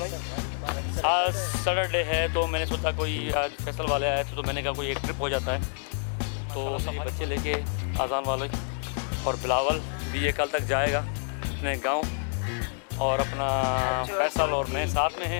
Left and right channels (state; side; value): silent; right; digital silence